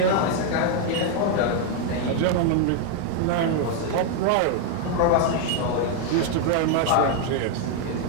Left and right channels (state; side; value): different; both; correlation 0.01